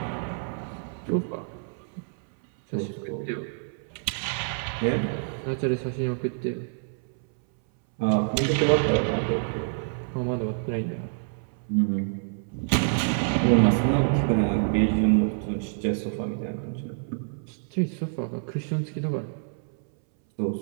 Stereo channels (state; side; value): silent; left; 60 dB below the other